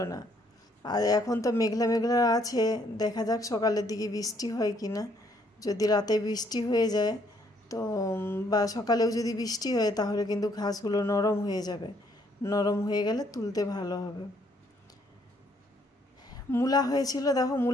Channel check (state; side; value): normal; both; correlation 0.68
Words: না। আর এখন তো মেঘলা মেঘলা আছে, দেখা যাক সকালের দিকে বৃষ্টি হয় কি না। যদি রাতে বৃষ্টি হয়ে যায় তো বা সকালেও যদি বৃষ্টি হয় তাহলে কিন্তু ঘাসগুলো নরম হয়ে যাবে, নরম হয়ে গেলে তুলতে ভালো হবে। মূলা হয়েছিল, দেখো